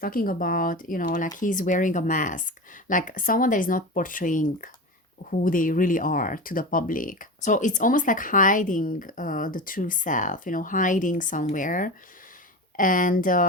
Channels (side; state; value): both; normal; correlation 0.26